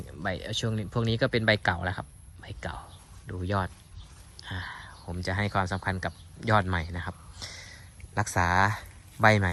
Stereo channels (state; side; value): identical; both; correlation 1.00